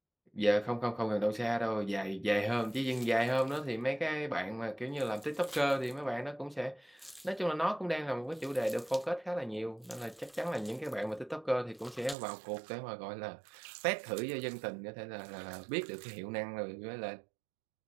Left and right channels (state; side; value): drops out; left; at 12.2 s